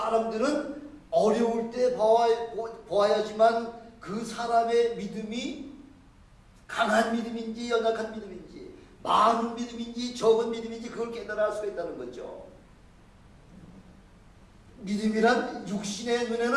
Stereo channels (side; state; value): both; identical; correlation 1.00